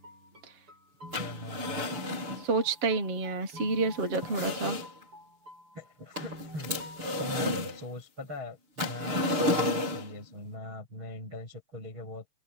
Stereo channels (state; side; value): late; left; 6.9 ms